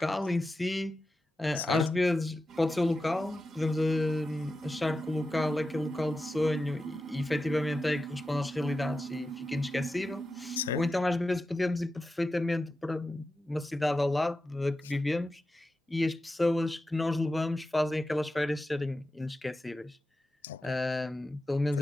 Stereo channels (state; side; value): normal; both; correlation 0.92